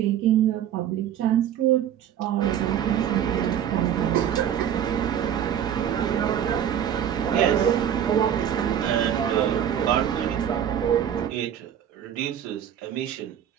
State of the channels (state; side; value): quieter; left; 9.7 dB